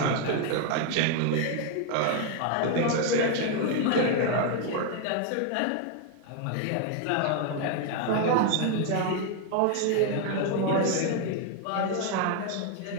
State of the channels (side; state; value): both; different; correlation 0.01